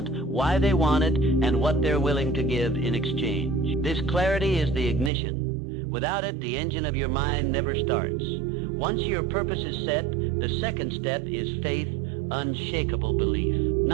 why they want it, and what they're willing to give in exchange. This clarity is the ignition. Without it, the engine of your mind never starts. Once your purpose is set, the second step is faith, unshakable belief.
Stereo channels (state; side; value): drops out; left; at 5.1 s